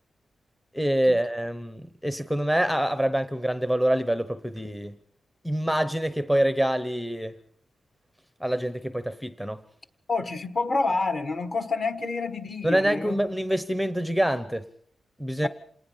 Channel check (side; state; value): both; normal; correlation 0.96